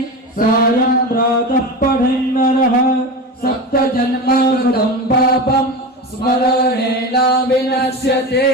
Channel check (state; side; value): normal; both; correlation 0.25